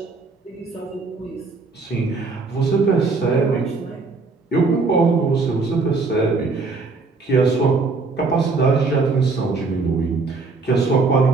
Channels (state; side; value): quieter; left; 4.0 dB